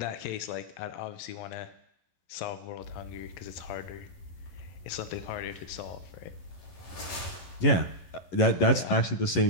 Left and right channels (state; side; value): late; right; 11 ms